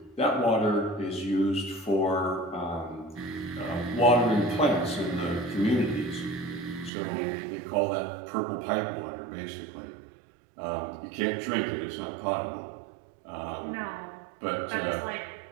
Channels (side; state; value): left; drops out; at 6.9 s